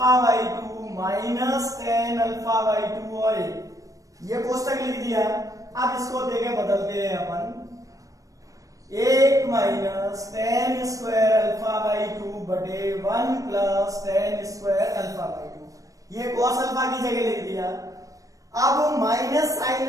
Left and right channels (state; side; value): late; left; 0.16 ms